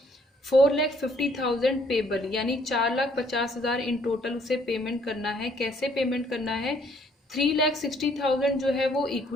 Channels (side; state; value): both; normal; correlation 0.64